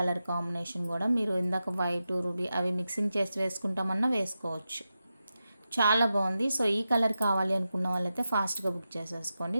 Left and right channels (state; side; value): inverted; both; correlation -0.90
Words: కాంబినేషన్ కూడా. మీరు ఇందాక వైట్ రూబీ అవి మిక్సింగ్ చేసి వేసుకుంటామన్నా వేసుకోవచ్చు, చాలా బాగుంది. సో ఈ కలర్ కావాలి అనుకున్న వాళ్ళైతే ఫాస్ట్గా బుక్ చేసేసుకోండి.